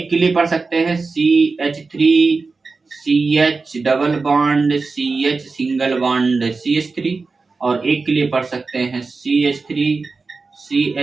के लिए पढ़ सकते हैं CH3CH double bond CH single bond CH3, और एक के लिए पढ़ सकते हैं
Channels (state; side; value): quieter; left; 4.2 dB